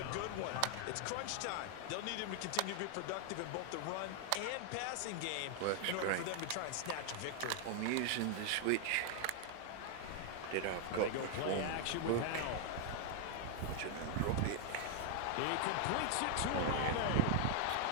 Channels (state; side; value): different; both; correlation 0.00